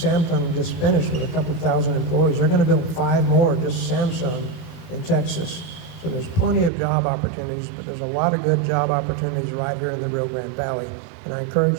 just finished with a couple thousand employees. They're going to build 5 more, just Samsung, in Texas. So there's plenty of job opportunities, but there's a lot of good job opportunities right here in the Rio Grande Valley. And I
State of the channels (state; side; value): drops out; left; at 6.7 s